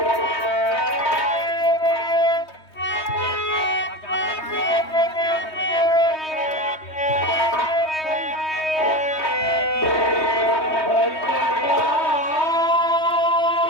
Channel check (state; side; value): late; right; 3.2 ms